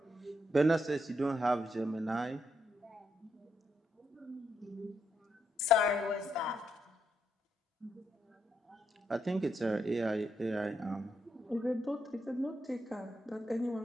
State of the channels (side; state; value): both; normal; correlation 0.79